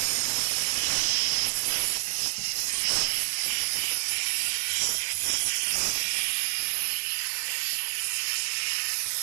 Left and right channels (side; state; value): left; silent; 60 dB below the other